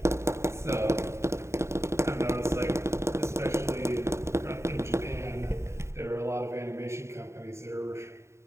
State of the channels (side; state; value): left; late; 0.13 ms